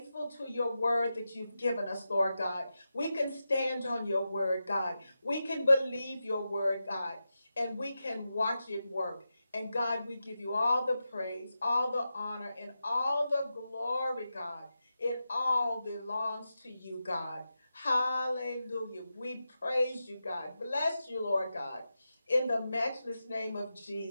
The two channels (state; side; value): inverted; both; correlation -0.90